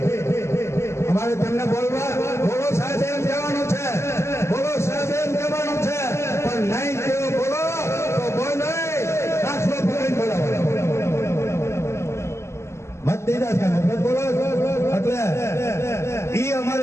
અમારે તમને બોલવા બોલો સાહેબ એમ કહેવાનું છે, બોલો સાહેબ એમ કહેવાનું છે, પણ નહીં કેવો બોલો તો બોલ નહીં દાખલો પકડીને બોલાવો. મત દીધા છે મત બોલો એટલે ઈ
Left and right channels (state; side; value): late; right; 0.13 ms